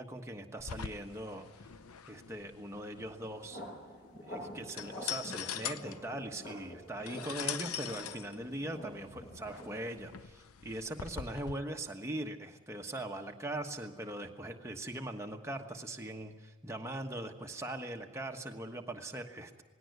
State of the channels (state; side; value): normal; both; correlation 0.47